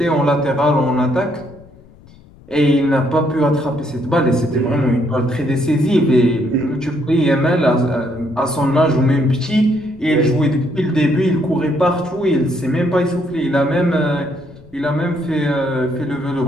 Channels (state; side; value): noise; left; rumble, 24 dB below the sound